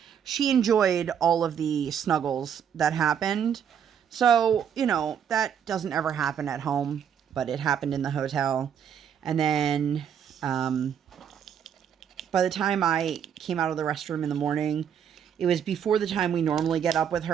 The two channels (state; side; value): quieter; left; 8.3 dB